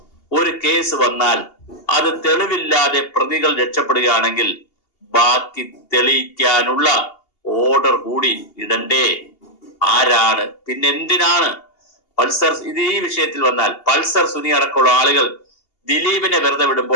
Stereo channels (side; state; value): right; late; 2.8 ms